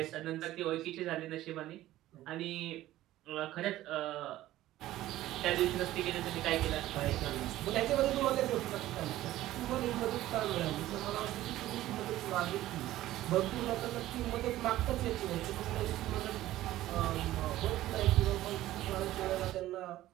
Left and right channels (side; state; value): left; quieter; 15.0 dB